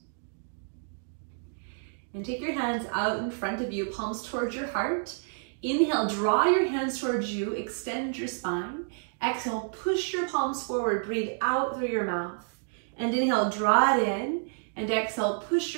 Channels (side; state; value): left; silent; digital silence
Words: And take your hands out in front of you, palms towards your heart. Inhale, draw your hands towards you, extend your spine. Exhale, push your palms forward, breathe out through your mouth. And inhale, draw it in. And exhale, push